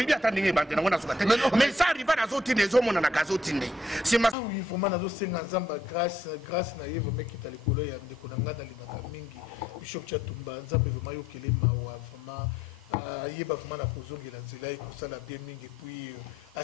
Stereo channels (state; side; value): normal; both; correlation 0.70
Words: bien attendez bande na sukate. Mais ça rival na zoti les hommes na gazotinde. C'est ma oui vraiment na zo senga nzamba grâce na yevo meki talikolo ya ndeko na ngada limaka mingi. Bishop Tchatumba nzambe vraiment yokele mawa vraiment yeba vraiment na kozongela nzela ekosala bien mingi puis à